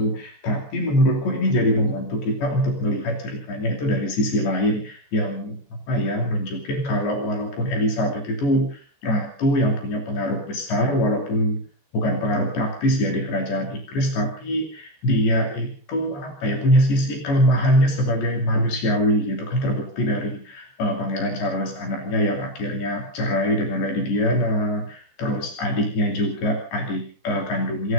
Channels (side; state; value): right; late; 14 ms